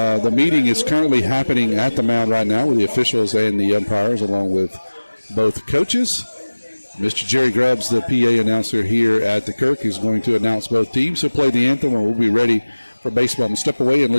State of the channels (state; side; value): inverted; both; correlation -1.00